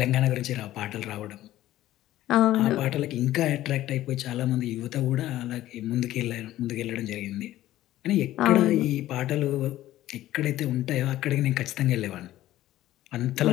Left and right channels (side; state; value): right; quieter; 14.5 dB